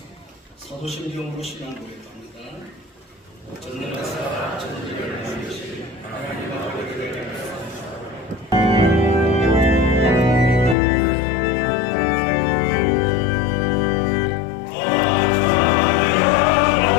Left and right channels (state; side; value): drops out; right; at 10.8 s